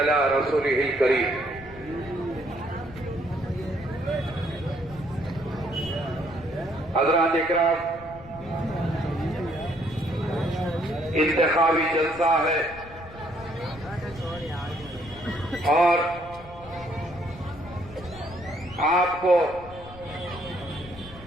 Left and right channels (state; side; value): noise; left; rumble, 18 dB below the sound